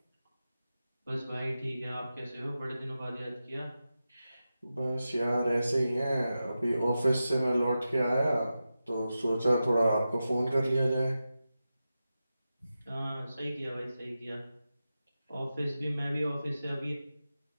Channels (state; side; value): inverted; both; correlation -0.92